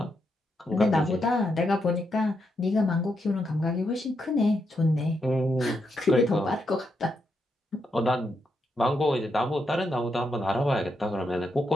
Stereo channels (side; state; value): both; normal; correlation 0.81